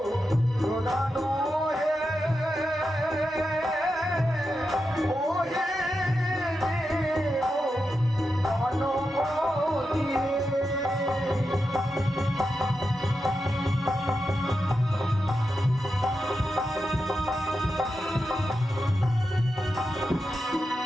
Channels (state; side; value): normal; both; correlation 0.88